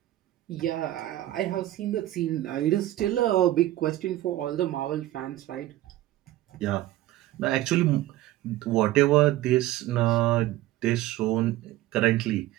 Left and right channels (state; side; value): quieter; left; 15.1 dB